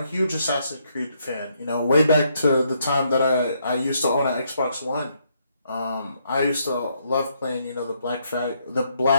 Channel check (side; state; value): both; inverted; correlation -0.74